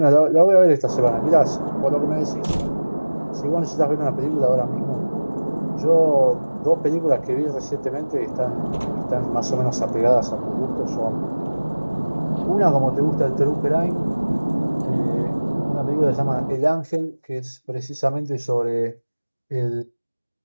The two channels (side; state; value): both; inverted; correlation -1.00